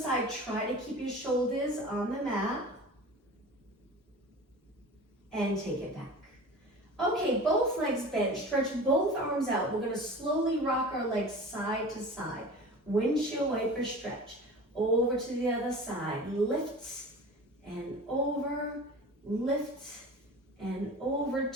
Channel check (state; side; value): normal; both; correlation 0.37